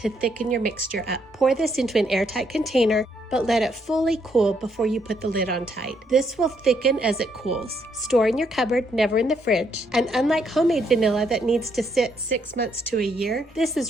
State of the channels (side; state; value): both; normal; correlation 0.73